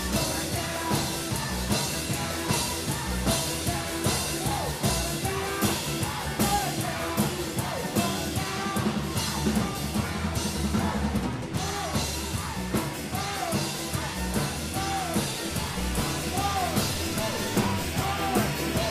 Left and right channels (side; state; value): both; identical; correlation 1.00